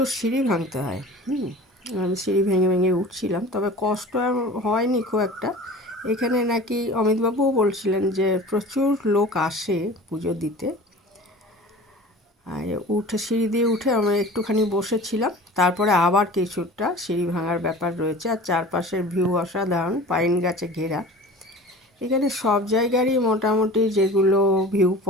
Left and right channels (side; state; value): both; normal; correlation 0.40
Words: সিঁড়ি ভাঙতে হয়। আমি সিঁড়ি ভেঙে ভেঙে উঠছিলাম, তবে কষ্ট হয়নি খুব একটা। এখানে নাকি অমিতবাবুও বলছিলেন যে প্রচুর লোক আসে পুজো দিতে। আর সিঁড়ি দিয়ে উঠে আমি একটুখানি বসেছিলাম, তারপরে আবার কিছুটা সিঁড়ি ভাঙার ব্যাপার রয়েছে। আর চারপাশের ভিউ অসাধারণ, পাইন গাছে ঘেরা। এখানে সব জায়গারই মোটামুটি যেগুলো ভিউ